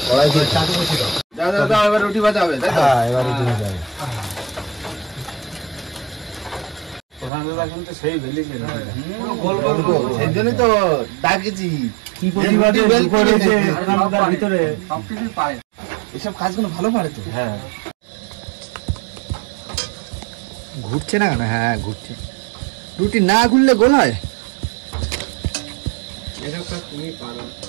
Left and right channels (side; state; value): left; drops out; at 7.3 s